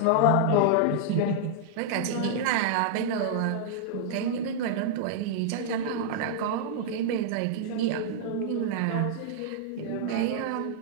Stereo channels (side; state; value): both; different; correlation -0.01